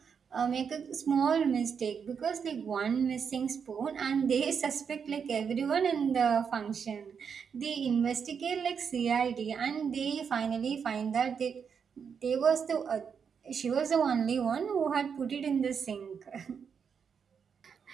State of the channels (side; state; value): left; quieter; 6.7 dB